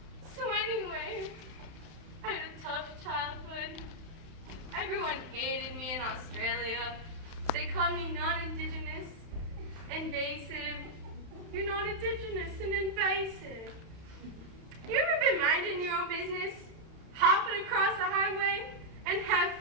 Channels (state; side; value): late; left; 31 ms